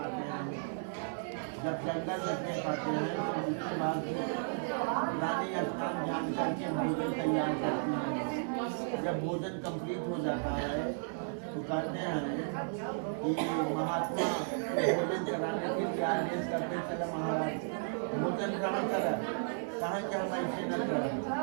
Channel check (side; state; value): left; silent; 55 dB below the other